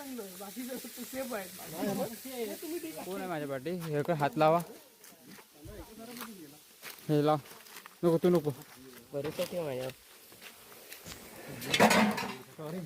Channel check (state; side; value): identical; both; correlation 1.00